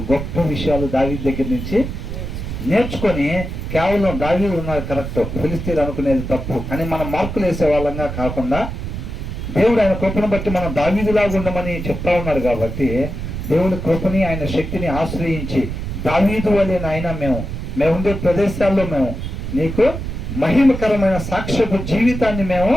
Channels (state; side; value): noise; right; rumble, 6 dB below the sound